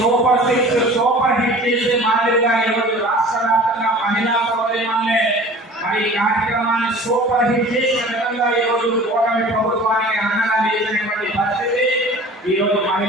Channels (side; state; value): both; normal; correlation 0.43